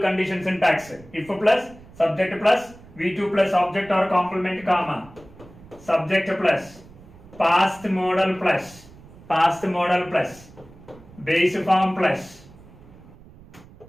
syntax. If plus, subject plus, V2 plus, object or complement, comma. Subject plus, past modal plus, base form plus,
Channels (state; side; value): noise; right; rumble, 22 dB below the sound